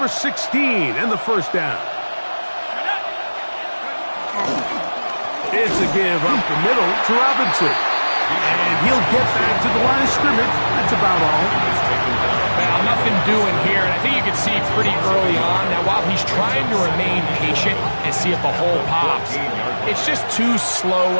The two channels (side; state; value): both; inverted; correlation -1.00